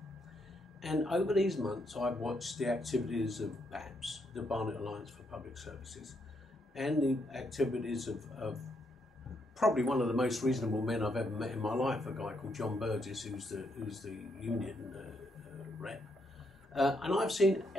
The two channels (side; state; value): both; normal; correlation 0.77